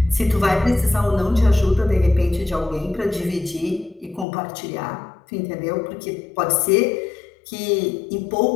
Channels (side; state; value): right; drops out; at 4.2 s